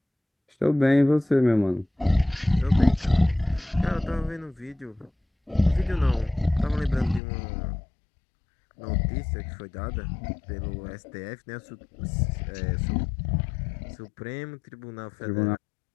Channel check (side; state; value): right; drops out; at 7.2 s